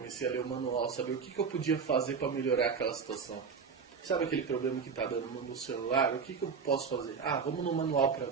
a ler o manual, saber o que eu podia fazer para melhorar aquela situação. Sabe aquele problema que está dando no celular? O que eu posso fazer? Vamos no manual para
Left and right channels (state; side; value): quieter; left; 5.8 dB